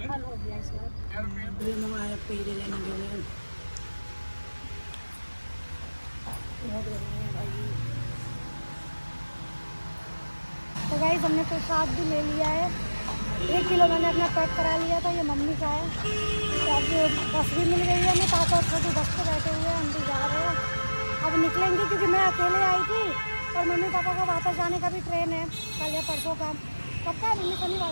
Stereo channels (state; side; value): inverted; both; correlation -1.00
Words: हो गया इस बार। तो गाइस, हमने प्रसाद भी ले लिया है, 1 किलो मैंने अपना पैक करा लिया था, ये मम्मी का है। तो अब बस भी मिल गई है, हमें पापा और छोटू बस पे बैठे हुए हैं, हम भी जा रहे हैं। अब निकलेंगे क्योंकि मैं अकेले आई थी और मम्मी पापा का वापस जाने का भी ट्रेन है कल या परसों का। कब का? मम्मी